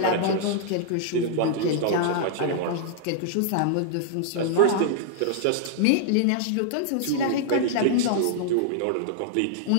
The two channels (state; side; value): different; both; correlation -0.01